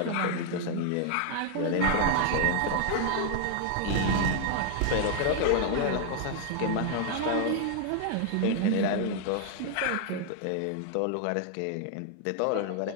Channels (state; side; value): different; both; correlation 0.00